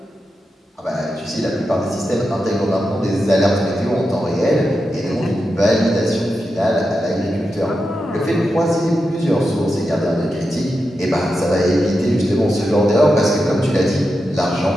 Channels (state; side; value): normal; both; correlation 0.89